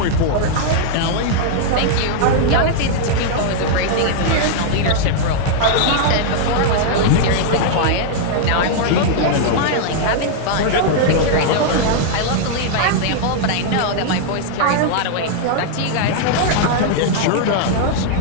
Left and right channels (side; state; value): both; different; correlation -0.01